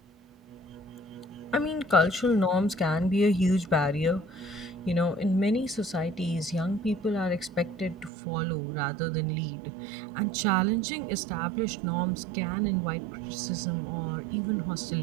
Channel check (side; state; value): left; drops out; at 8.1 s